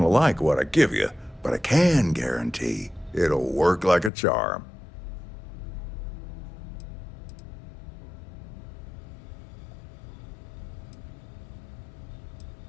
like what I give you, but I can guarantee it'll work like a charm.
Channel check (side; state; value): right; drops out; at 4.1 s